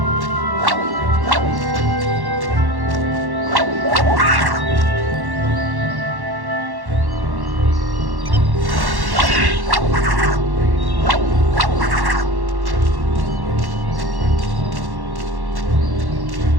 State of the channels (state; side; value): late; left; 1.1 ms